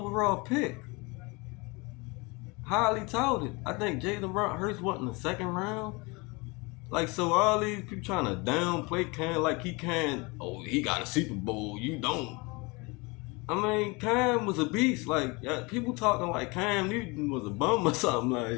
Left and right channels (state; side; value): quieter; right; 26.8 dB